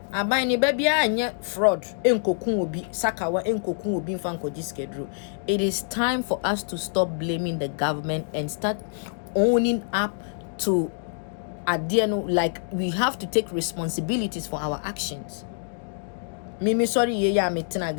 abai ni baby anye fraud enkokun obi sakawa enkokun obi mfanko diskedro. It is time for us to stop blaming the government and start owning up to adiano. Like, we have to take responsibilities for our actions. Mimi sorry ye ya metina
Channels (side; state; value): right; silent; digital silence